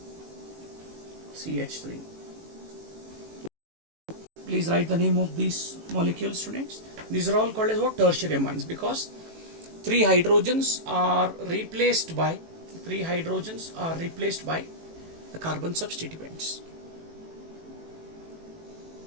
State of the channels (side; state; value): left; late; 18 ms